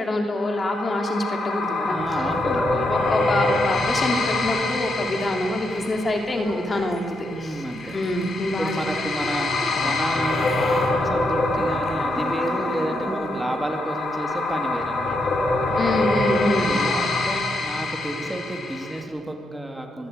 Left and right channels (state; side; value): normal; both; correlation 0.81